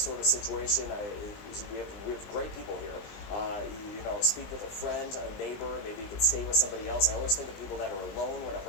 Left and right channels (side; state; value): right; late; 20 ms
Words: of situation, we have great people here. Speak with a friend, a neighbor. Maybe you could stay with somebody else. I always think of people that are alone when a